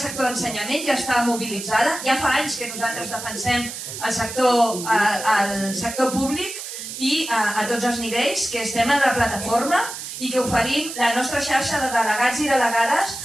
sector d'ensenyament, ja està mobilitzada. Ja fa anys que nosaltres defensem el sector públic i a tots els nivells, que estem en la plataforma i que oferim la nostra xarxa de delegats i delegades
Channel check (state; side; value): noise; right; hiss, 9 dB below the sound